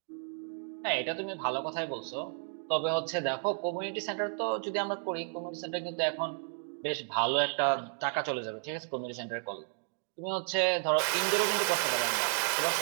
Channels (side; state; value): left; silent; 56 dB below the other